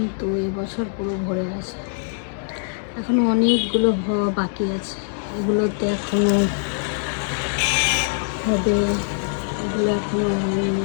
এবছর পুরো ভরে গেছে। এখনো অনেকগুলো হওয়া বাকি আছে, এগুলোতে এখনো হবে, এগুলো এখনো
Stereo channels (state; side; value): silent; right; 64 dB below the other